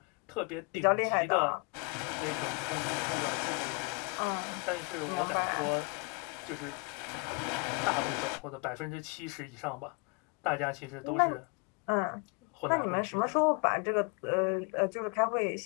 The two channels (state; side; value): quieter; right; 31.8 dB